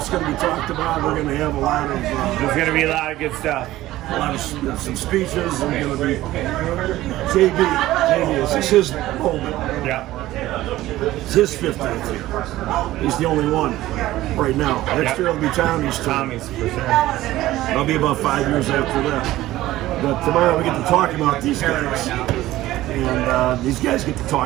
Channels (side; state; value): left; quieter; 15.8 dB